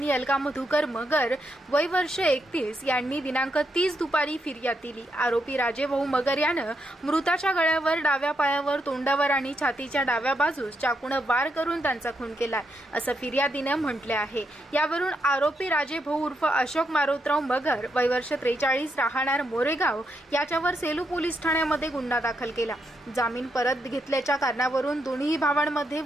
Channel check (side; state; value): both; normal; correlation 0.80